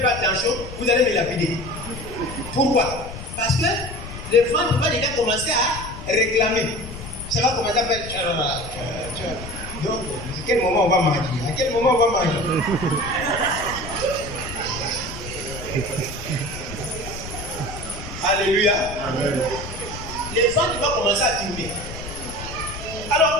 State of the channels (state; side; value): noise; left; rumble, 11 dB below the sound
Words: pas attention, vous allez me lapider. Pourquoi? Parce que le ventre va déjà commencer à réclamer. Ça va commencer à faire. Donc, à quel moment on va manger? À quel moment on va manger? Alléluia. Amen. Le ventre va commencer à diminuer. Alors,